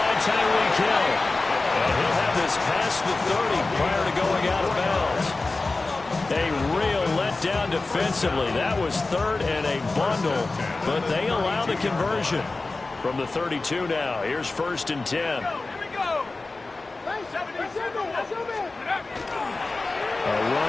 Tyreek Hill. And he'll have this past the 30 prior to going out of bounds. A real letdown defensively. That was 3rd and a bundle, but they allow the conversion. From the 32 now, here's 1st and 10. Here we go. A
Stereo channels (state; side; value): quieter; right; 3.4 dB